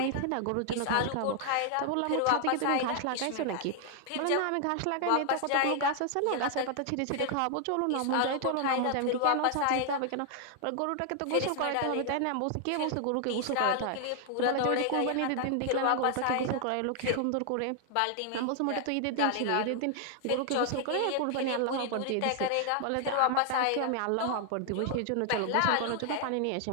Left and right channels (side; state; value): both; different; correlation 0.00